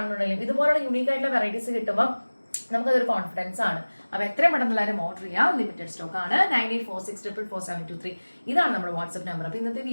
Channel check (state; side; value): inverted; both; correlation -1.00